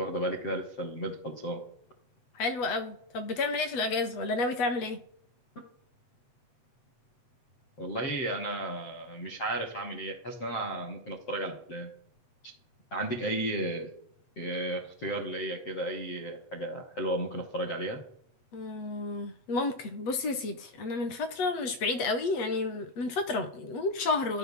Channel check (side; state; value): right; late; 8.2 ms